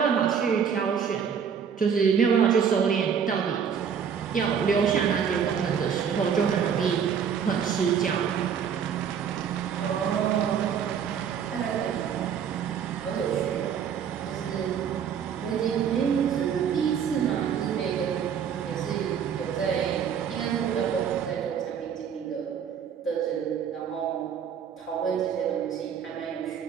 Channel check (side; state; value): left; quieter; 7.5 dB